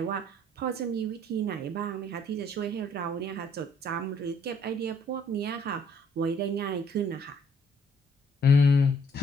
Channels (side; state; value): both; normal; correlation 0.64